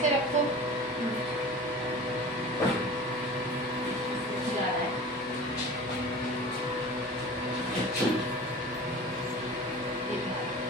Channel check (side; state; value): both; normal; correlation 0.38